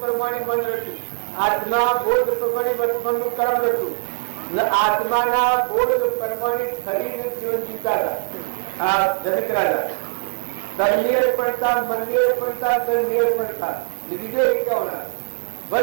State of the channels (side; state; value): left; silent; digital silence